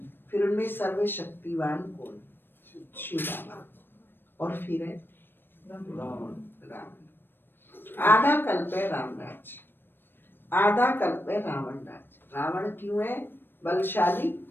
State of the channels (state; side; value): late; right; 0.097 ms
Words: फिर उनमें सर्वशक्तिवान कौन? शिव बाबा। और फिर है रावण। आधा कल्प है राम राज्य, आधा कल्प है रावण राज्य। रावण क्यों है बलशाली?